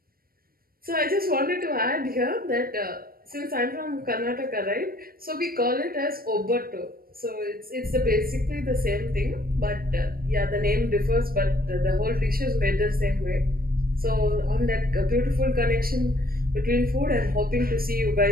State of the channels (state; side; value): late; left; 0.43 ms